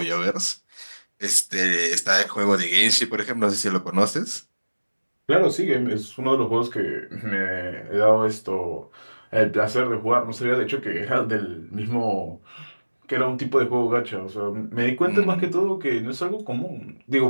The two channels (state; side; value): inverted; both; correlation -1.00